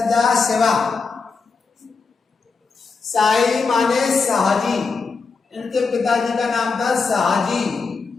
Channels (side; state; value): right; quieter; 4.7 dB